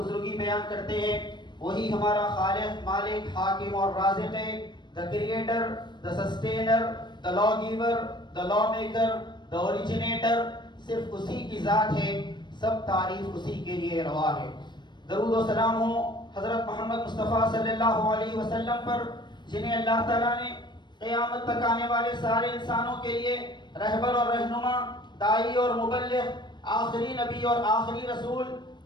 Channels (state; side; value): late; right; 0.22 ms